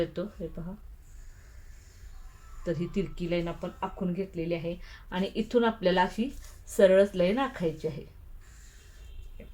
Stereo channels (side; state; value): both; identical; correlation 1.00